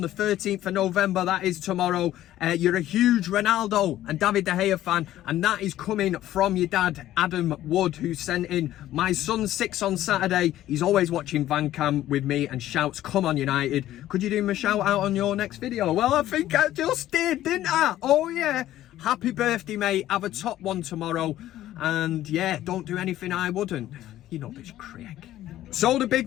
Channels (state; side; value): quieter; right; 13.6 dB